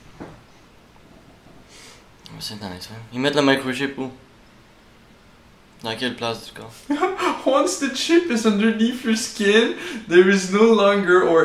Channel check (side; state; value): both; identical; correlation 1.00